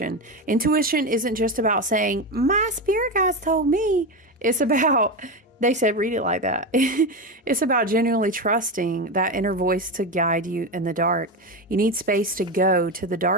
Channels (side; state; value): both; normal; correlation 0.16